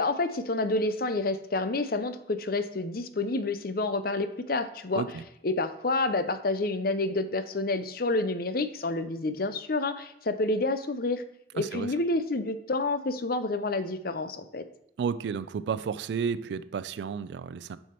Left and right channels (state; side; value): normal; both; correlation 0.06